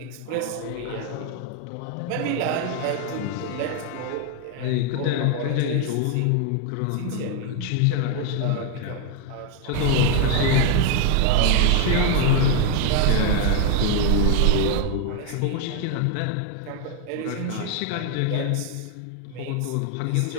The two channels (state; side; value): different; both; correlation 0.00